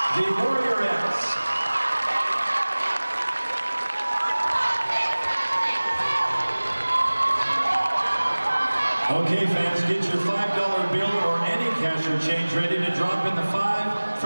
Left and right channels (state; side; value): inverted; both; correlation -1.00